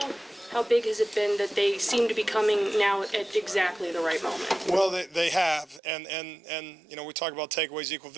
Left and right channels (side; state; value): left; drops out; at 5.8 s